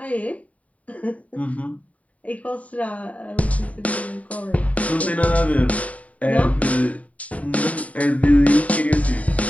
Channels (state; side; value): late; right; 0.068 ms